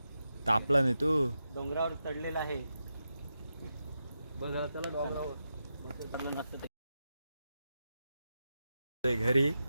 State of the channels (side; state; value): both; inverted; correlation -0.88